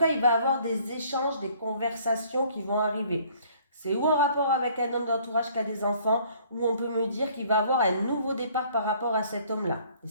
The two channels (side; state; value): both; inverted; correlation -0.58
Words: il va avoir des échanges, des conversations qui vont arriver. C'est ou en rapport avec un homme d'entourage qui a des enfants, ou on peut me dire qu'il va avoir un nouveau départ par rapport à cet homme-là, les